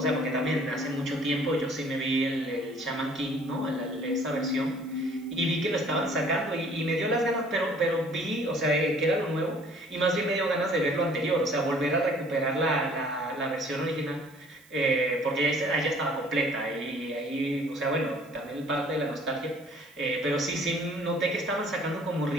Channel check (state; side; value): noise; right; hiss, 28 dB below the sound